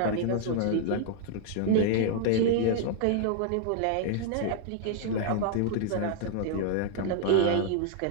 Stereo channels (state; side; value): different; both; correlation -0.01